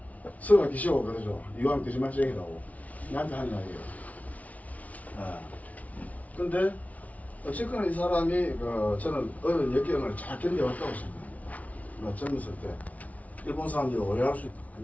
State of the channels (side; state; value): right; late; 0.070 ms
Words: 서가 기시고 그러죠. 이왕 거짓말쟁이라고 나한테 하는 이야기예요. 근데 어쨌거나 이 사람이 저는 어려운 역경을 잘 견뎌왔다고 생각해요. 젊었을 때 일본 사람들이 오해할 수 안